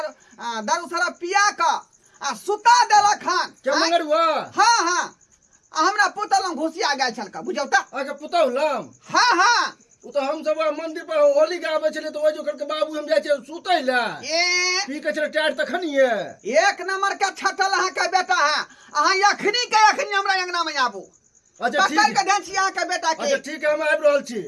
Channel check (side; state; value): both; identical; correlation 1.00